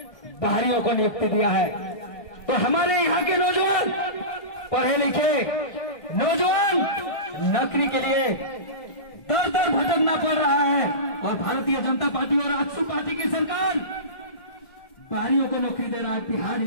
बाहरियों को नियुक्ति दिया है। तो हमारे यहाँ के नौजवान, पढ़े लिखे नौजवान नौकरी के लिए दर दर भटकना पड़ रहा है और भारतीय जनता पार्टी और आजसू पार्टी की सरकार बाहरियों को नौकरी दे रहा है, बिहार,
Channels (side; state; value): right; late; 1.6 ms